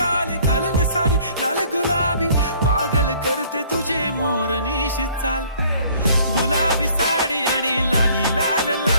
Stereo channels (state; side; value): inverted; both; correlation -0.56